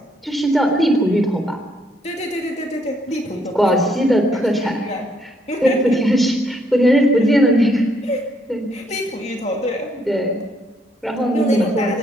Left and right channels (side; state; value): both; normal; correlation 0.71